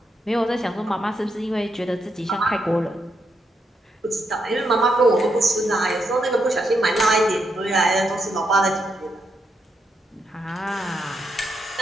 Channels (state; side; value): normal; both; correlation 0.81